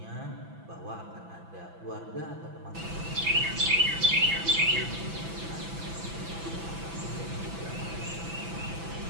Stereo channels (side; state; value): left; late; 6.0 ms